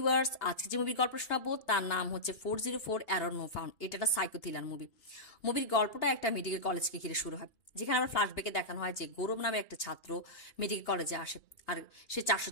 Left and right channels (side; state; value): right; late; 2.8 ms